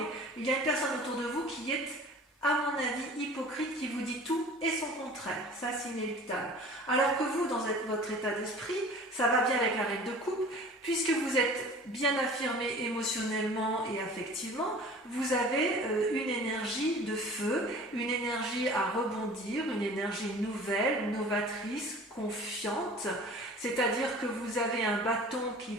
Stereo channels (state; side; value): normal; both; correlation 0.44